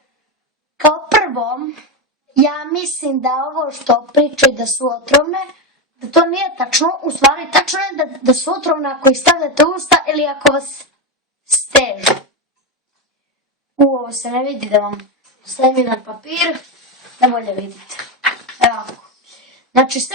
Kao prvo, ja mislim da ovo što pričaju da su otrovne, da to nije tačno, u stvari tačno je da su otrovne ako ih stavljate u usta ili ako vas stežu. Ovo se ne vidi, da vam stavim jedan papir, da bolje vidite. Evo ovako. Znači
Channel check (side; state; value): both; normal; correlation 0.12